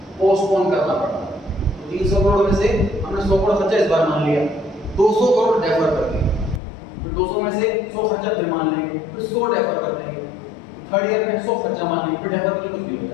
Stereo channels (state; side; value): drops out; right; at 6.6 s